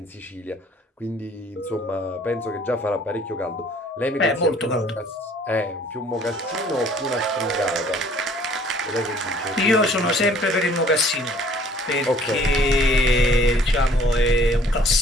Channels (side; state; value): both; normal; correlation 0.56